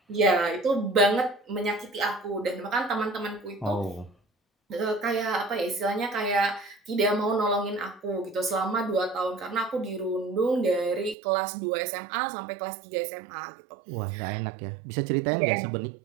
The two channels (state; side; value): drops out; left; at 11.2 s